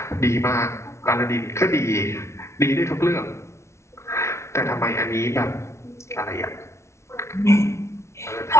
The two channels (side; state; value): right; late; 0.13 ms